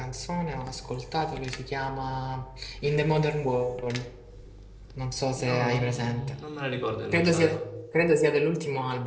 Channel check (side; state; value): both; identical; correlation 1.00